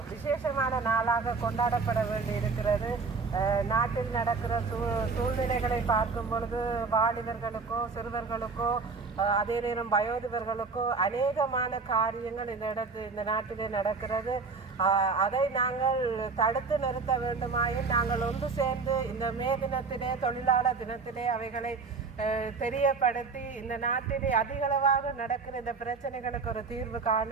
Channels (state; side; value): quieter; left; 4.5 dB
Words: விசேஷமான நாளாக கொண்டாடப்பட வேண்டி இருக்கிறது. நாட்டில் நடக்கிற சூழ்நிலைகளை பார்க்கும் பொழுது வாலிபர்களுக்கோ சிறுவர்களுக்கோ அதே நேரம் வயோதிபர்களுக்கோ அநேகமான காரியங்கள் இந்த நாட்டிலே நடக்கிறது. அதை நாங்கள் தடுத்து நிறுத்த வேண்டுமாயின் நாங்கள் ஒன்று சேர்ந்து இந்த மே தினத்திலே தொழிலாளர் தினத்திலே அவைகளை தெரியப்படுத்தி இந்த நாட்டிலே அதிகளவாக நடக்கிற இந்த பிரச்சனைகளுக்கு ஒரு தீர்வு